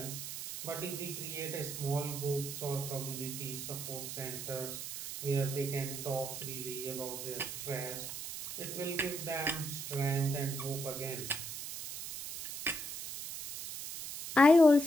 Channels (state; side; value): noise; right; hiss, 7 dB below the sound